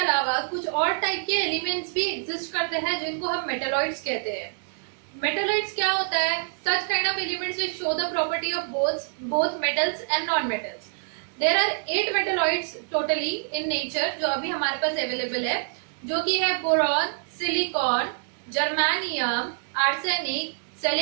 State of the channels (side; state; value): left; silent; digital silence